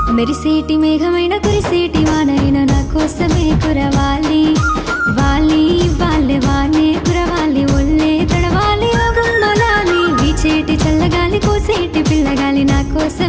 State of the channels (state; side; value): identical; both; correlation 1.00